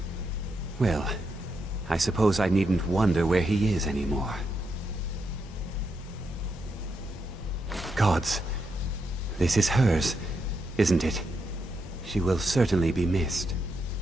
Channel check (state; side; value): normal; both; correlation 0.82